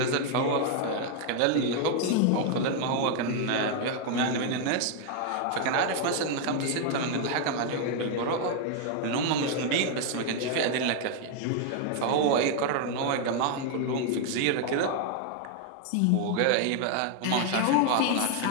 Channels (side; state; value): both; different; correlation 0.00